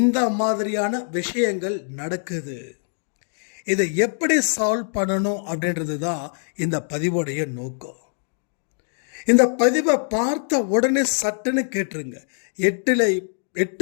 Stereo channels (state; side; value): silent; right; 60 dB below the other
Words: மாதிரியான விஷயங்கள் நடக்குது. இதை எப்படி சால்வ் பண்ணணும் அப்படின்றது தான் இந்த பதிவோடைய நோக்கம். இந்த பதிவை பார்த்த உடனே சட்டுன்னு கேட்டுருங்க.